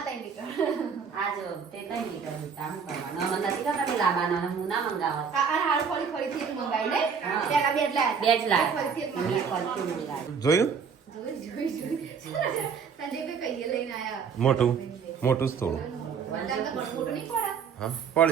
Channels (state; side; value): quieter; left; 6.3 dB